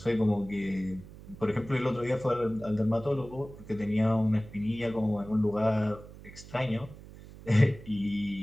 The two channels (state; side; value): noise; right; hum, 17 dB below the sound